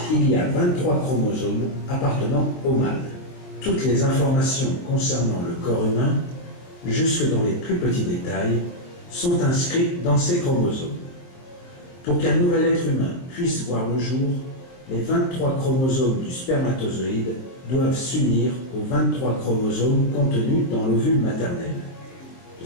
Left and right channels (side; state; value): right; late; 22 ms